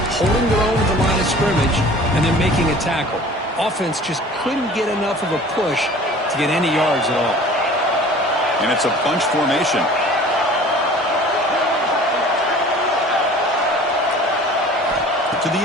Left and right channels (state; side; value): normal; both; correlation 0.45